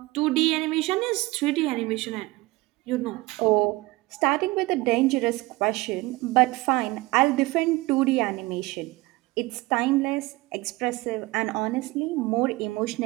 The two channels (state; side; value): quieter; left; 21.0 dB